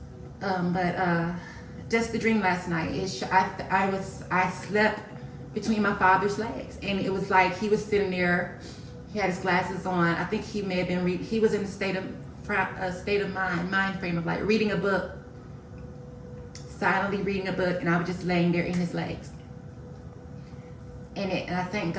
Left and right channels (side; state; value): both; identical; correlation 1.00